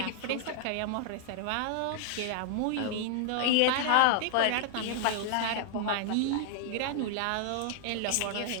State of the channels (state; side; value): different; both; correlation 0.00